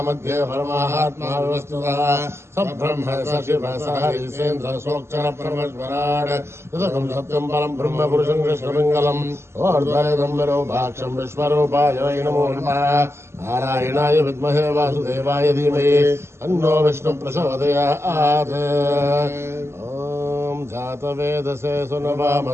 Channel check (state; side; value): late; left; 0.13 ms